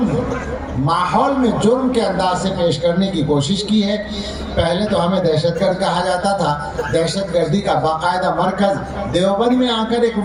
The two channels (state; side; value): identical; both; correlation 1.00